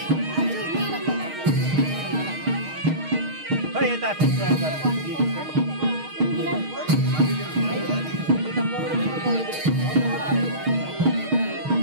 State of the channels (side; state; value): left; late; 6.4 ms